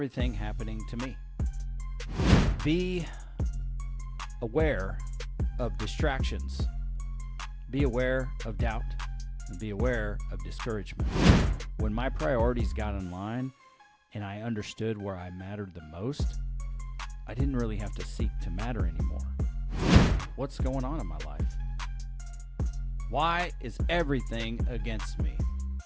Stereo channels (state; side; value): identical; both; correlation 1.00